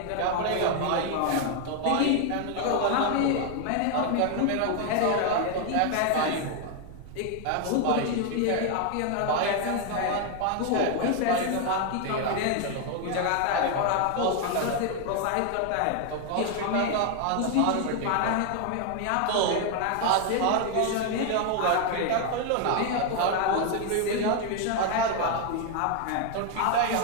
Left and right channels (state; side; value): different; both; correlation 0.00